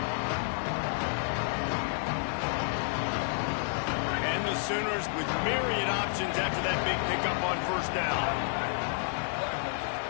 Sooners with myriad options after that big pickup on 1st down.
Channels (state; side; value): silent; right; digital silence